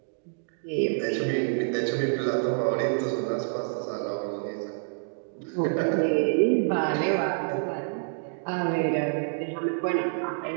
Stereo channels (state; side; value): silent; left; digital silence